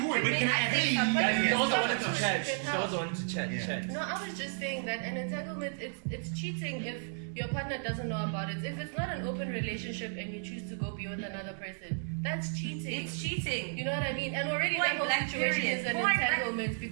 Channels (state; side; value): silent; left; digital silence